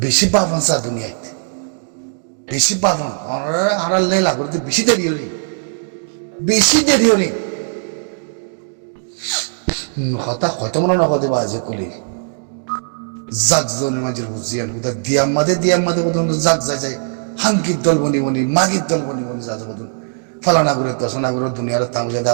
পাবন সা দুনিয়াতে বেশি পাবন আড়াল নেই লাগতে বেশি দেরি হলি হতা হয়তো মনে নগদে বা যে কলি জাগ জনের মাঝে বুঝিয়ান কোথা দিয়াম মাদে কত জাগ যায় হাঙ্কির দল বনি মাগির দল বনি যা যাবো ফলানা করে দশনা করে দুনিয়ার তামজা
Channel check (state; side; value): silent; left; digital silence